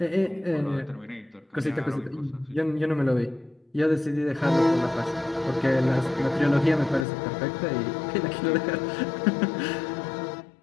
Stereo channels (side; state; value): right; drops out; at 7.1 s